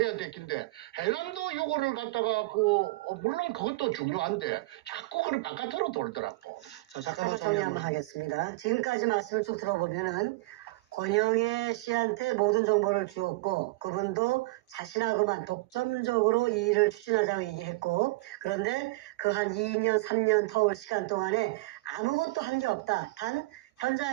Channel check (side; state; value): left; quieter; 22.0 dB